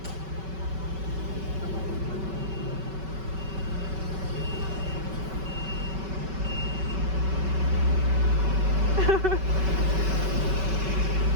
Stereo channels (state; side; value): late; left; 5.3 ms